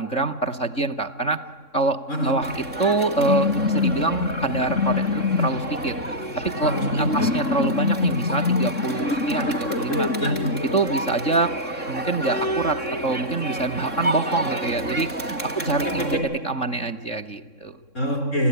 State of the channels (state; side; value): late; right; 3.6 ms